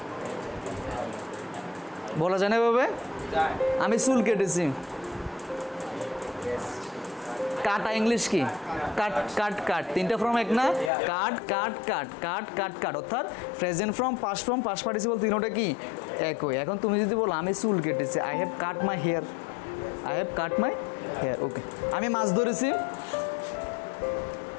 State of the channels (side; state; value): right; drops out; at 10.9 s